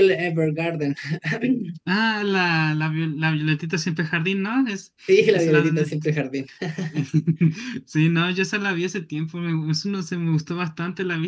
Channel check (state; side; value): identical; both; correlation 1.00